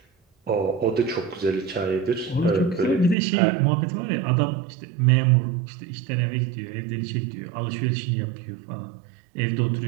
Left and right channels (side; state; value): left; drops out; at 3.2 s